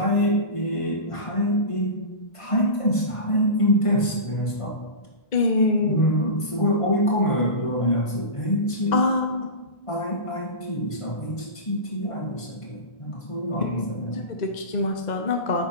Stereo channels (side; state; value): right; late; 1.5 ms